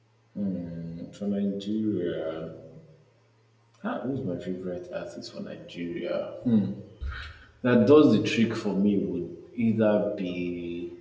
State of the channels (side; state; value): both; identical; correlation 1.00